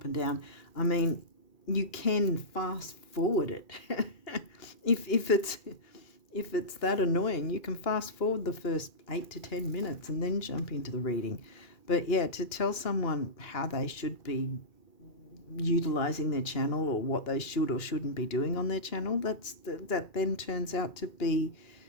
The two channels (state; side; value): late; right; 2.4 ms